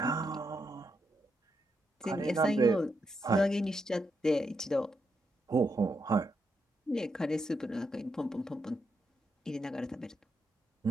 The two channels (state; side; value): normal; both; correlation 0.82